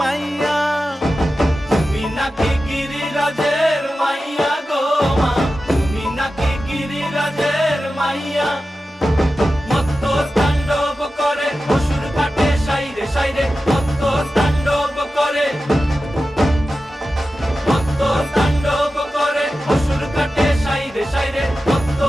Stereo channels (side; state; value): both; normal; correlation 0.93